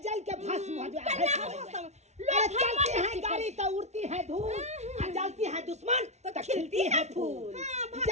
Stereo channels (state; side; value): late; left; 0.32 ms